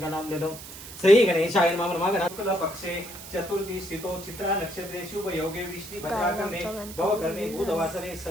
नाम ले लो. श्री गणेशाय नमः. नमः गणपति पक्षे चतुर्थी स्थितो चित्रा नक्षत्रे शुभ योगे विष्णु भद्राकर्णे भवकर्णे बुधवासरे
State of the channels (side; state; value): right; noise; hiss, 13 dB below the sound